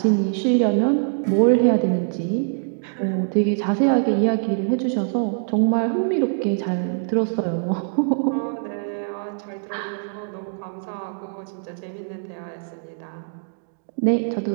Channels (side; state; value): left; silent; digital silence